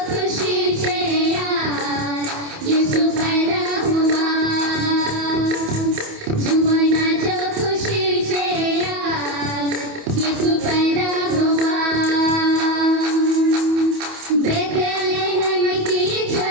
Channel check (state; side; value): late; left; 28 ms